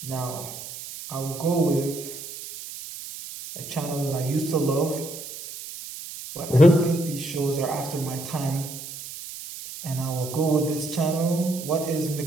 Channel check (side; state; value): right; noise; hiss, 11 dB below the sound